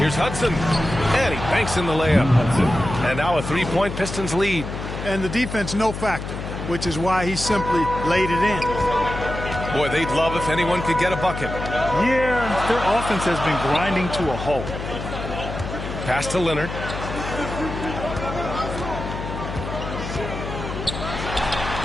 Hudson. And he banks in the layup. And now a 3-point Pistons lead. And the defense no factor, which is why he simply laid it in. Boy, they'd love if anyone could get a bucket. Yeah, their offense has been grinding to a halt. Pass to Leonard.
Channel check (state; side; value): noise; left; hum, 7 dB below the sound